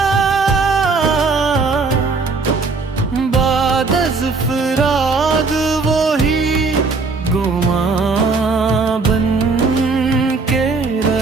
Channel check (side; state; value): left; quieter; 4.2 dB